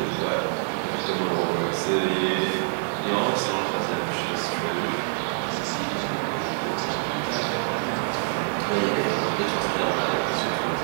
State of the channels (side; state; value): left; silent; digital silence